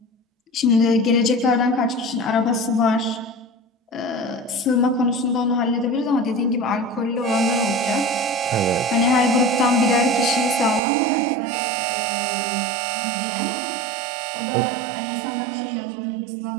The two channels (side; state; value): left; drops out; at 10.8 s